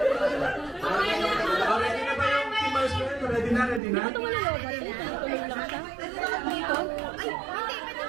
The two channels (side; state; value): left; drops out; at 3.8 s